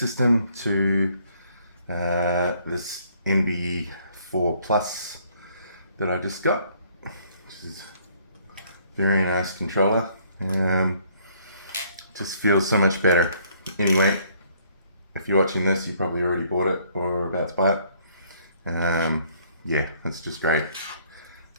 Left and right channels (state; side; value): inverted; both; correlation -0.64